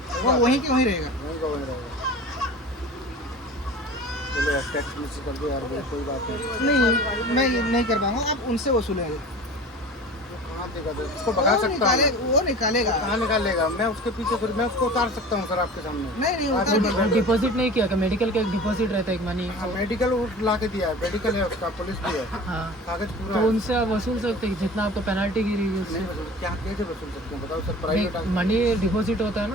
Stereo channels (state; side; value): normal; both; correlation 0.39